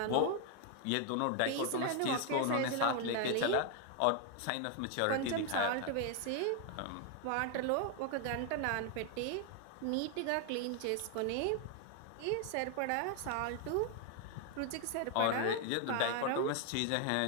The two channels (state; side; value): different; both; correlation 0.00